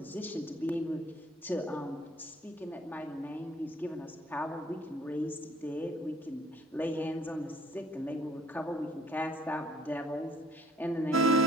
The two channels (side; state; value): both; normal; correlation 0.59